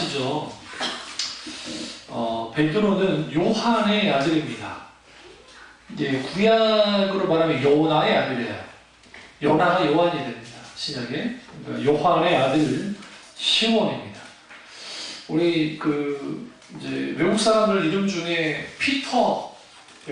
베드로는 요한의 아들입니다. 이제 구약으로 말하면 요나의 아들이에요. 요나가 요한이 됩니다. 신약에. 그러니까 요한의 아들 시몬입니다. 우리 이제 외국 사람들 이름 중에 피터,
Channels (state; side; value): identical; both; correlation 1.00